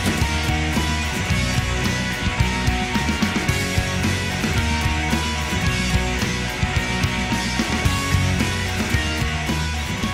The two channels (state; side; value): identical; both; correlation 1.00